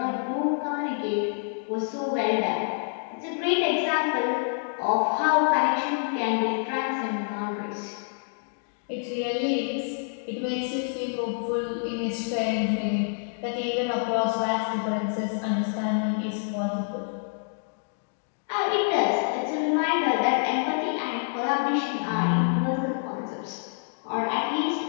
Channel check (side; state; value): right; silent; digital silence